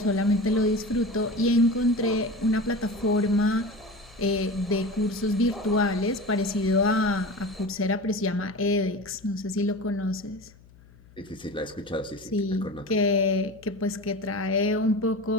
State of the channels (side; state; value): left; noise; hum, 25 dB below the sound